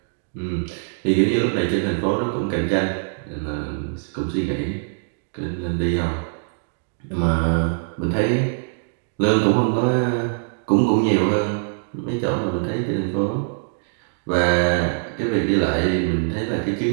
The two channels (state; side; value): silent; left; digital silence